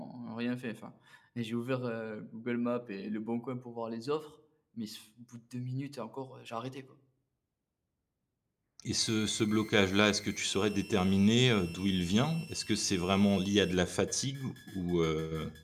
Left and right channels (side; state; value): both; identical; correlation 1.00